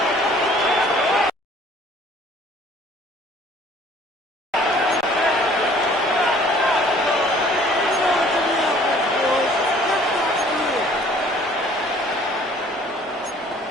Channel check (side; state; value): both; normal; correlation 0.54